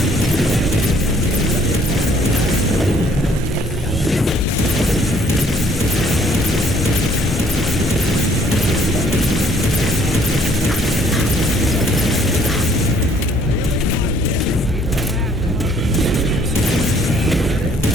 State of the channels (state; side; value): normal; both; correlation 0.61